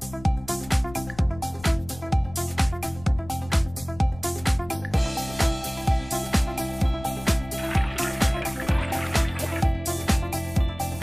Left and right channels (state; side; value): noise; left; rumble, 18 dB below the sound